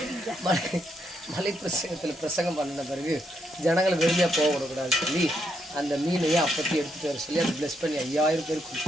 மலை பிரசங்கத்தில் பிரசங்கம் பண்ணின பிறகு ஜனங்களை வெறுமையாக போக விடக்கூடாதுன்னு சொல்லி அந்த மீனையும் அப்பத்தி எடுத்துகிட்டு வர சொல்லி அதை ப்ளஸ் பண்ணி 5000 பேர்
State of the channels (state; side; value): normal; both; correlation 0.78